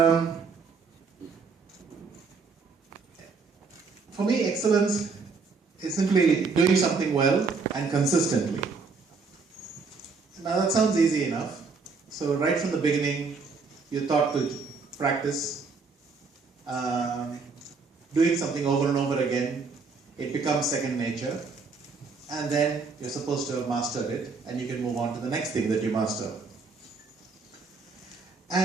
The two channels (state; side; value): quieter; left; 4.7 dB